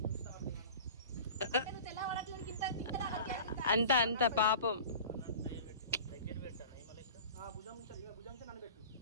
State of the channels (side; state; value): both; inverted; correlation -0.38